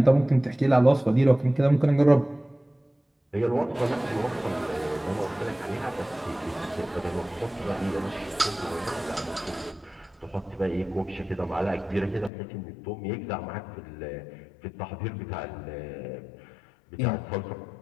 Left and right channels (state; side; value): drops out; right; at 12.3 s